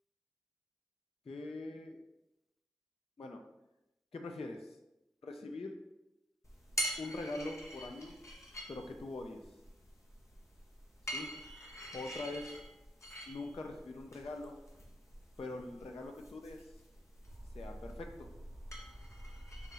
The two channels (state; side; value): normal; both; correlation 0.70